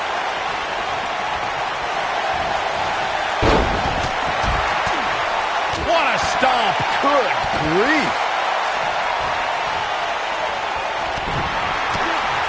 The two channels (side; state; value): both; identical; correlation 1.00